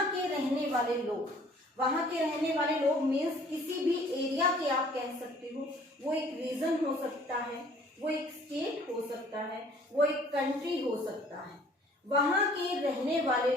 के रहने वाले लोग मीन्स किसी भी एरिया के आप कह सकते हो, वो एक रीजन हो सकता है, वो एक स्टेट हो सकता है, वो एक कंट्री हो सकता है। वहां के रहने वाले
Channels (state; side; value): normal; both; correlation 0.55